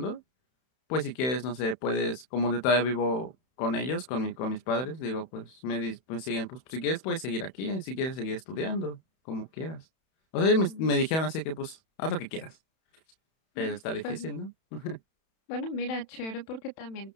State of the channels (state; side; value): late; right; 31 ms